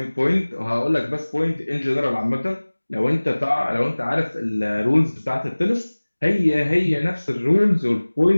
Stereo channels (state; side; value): inverted; both; correlation -1.00